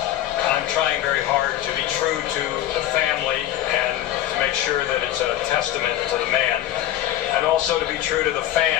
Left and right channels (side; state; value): right; quieter; 13.0 dB